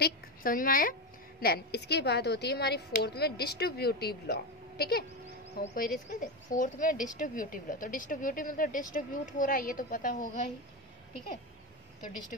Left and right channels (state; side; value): normal; both; correlation 0.15